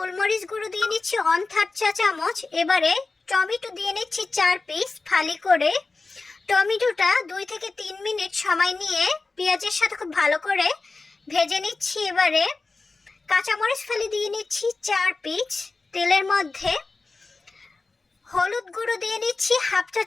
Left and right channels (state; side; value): quieter; right; 3.7 dB